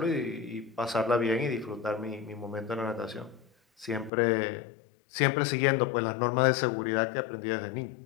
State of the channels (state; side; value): drops out; right; at 4.1 s